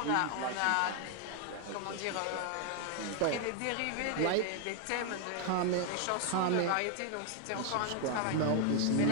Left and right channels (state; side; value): different; both; correlation 0.00